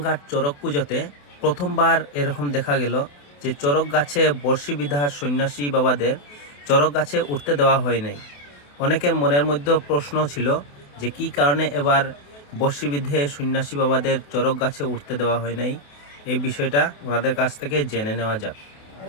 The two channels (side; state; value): right; late; 28 ms